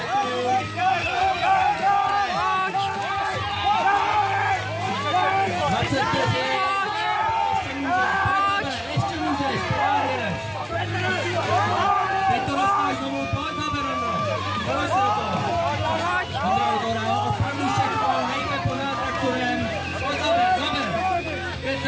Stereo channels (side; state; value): both; identical; correlation 1.00